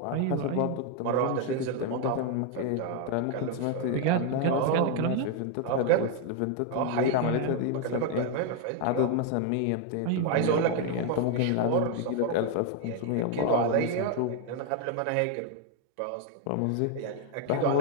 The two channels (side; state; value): both; different; correlation 0.00